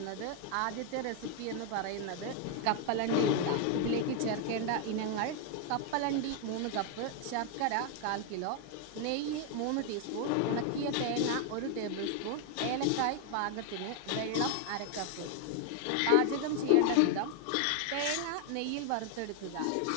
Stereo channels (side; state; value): both; different; correlation 0.00